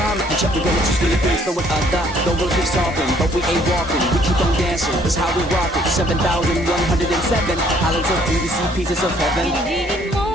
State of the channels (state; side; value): normal; both; correlation 0.62